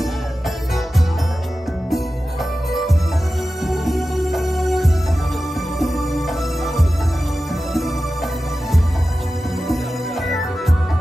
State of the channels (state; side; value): normal; both; correlation 0.94